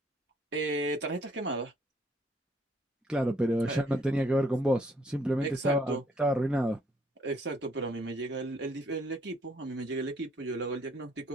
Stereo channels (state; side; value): normal; both; correlation 0.66